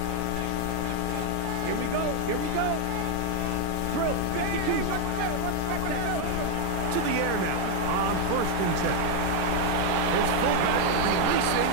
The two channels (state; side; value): different; both; correlation 0.00